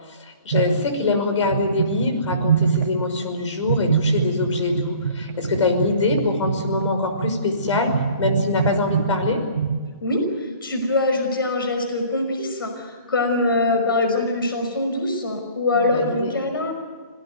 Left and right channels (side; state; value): both; inverted; correlation -0.49